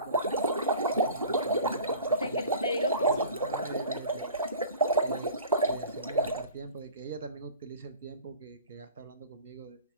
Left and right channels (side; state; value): both; inverted; correlation -0.43